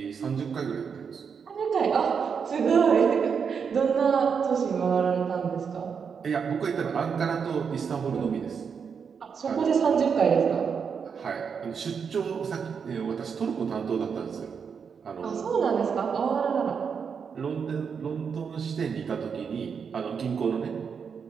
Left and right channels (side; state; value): left; quieter; 6.4 dB